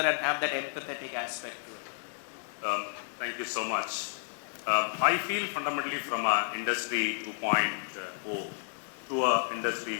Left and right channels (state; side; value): silent; right; 57 dB below the other